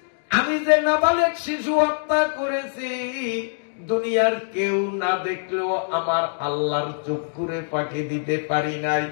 আমি যে নাবালেগ শিশু হত্যা করেছি, দুনিয়ার কেউ না দেখলেও আমার আল্লাহর চক্ষুরে ফাঁকি দিতে পারি নাই।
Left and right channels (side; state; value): right; silent; digital silence